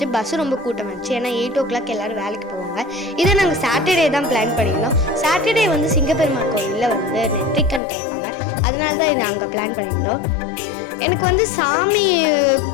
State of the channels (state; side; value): drops out; right; at 7.8 s